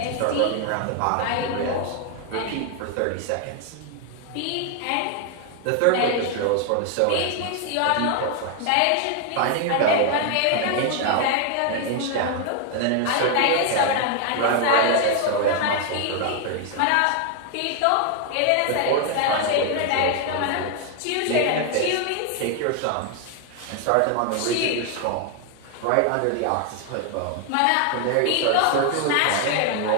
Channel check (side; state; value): both; different; correlation 0.00